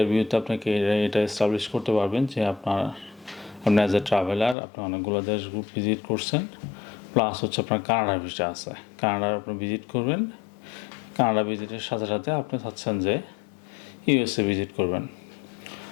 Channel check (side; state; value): right; drops out; at 4.5 s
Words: আপনাকে এটা এস্টাবলিশ করতে পারবেন যে আপনি অ্যাজ এ ট্রাভেলার আপনি অনেকগুলো দেশ ভিজিট করছেন, প্লাস হচ্ছে আপনার কানাডার ভিসা আছে, কানাডার আপনি ভিজিট করবেন। কানাডা ভিজিটের সাথে সাথে আপনি চাচ্ছেন যে ইউএসএ ভিজিট করবেন।